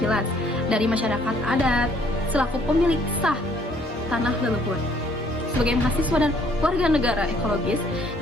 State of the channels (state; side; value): normal; both; correlation 0.63